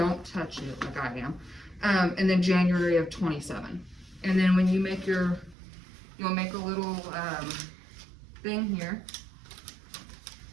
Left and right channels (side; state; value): left; drops out; at 5.6 s